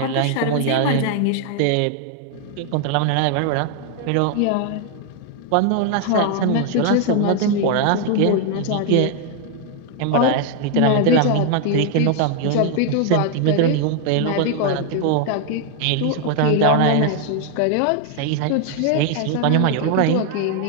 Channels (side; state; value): both; different; correlation 0.00